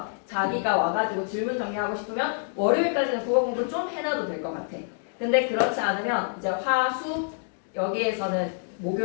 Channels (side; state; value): right; silent; digital silence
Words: 자기가 와가지고 질문 정리하고 싶으면 월요일까지는 국어 공부 좀 해놔도 될 것 같아. 근데 그렇지 않으면 이제 화, 수 여기에서는